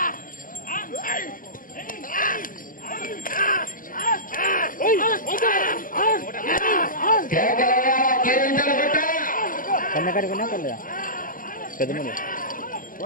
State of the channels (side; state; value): right; late; 0.40 ms